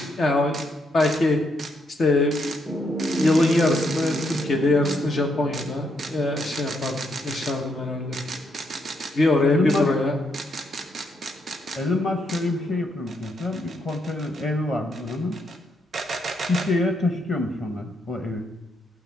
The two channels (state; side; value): normal; both; correlation 0.77